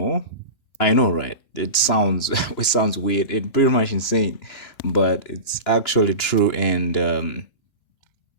I know, right? It sounds it sounds weird and pretty much insane, but it's actually true, and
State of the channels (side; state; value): right; late; 2.9 ms